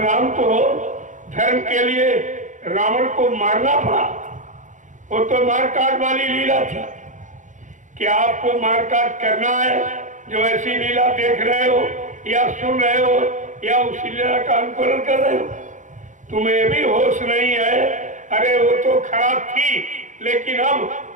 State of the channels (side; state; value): left; late; 0.36 ms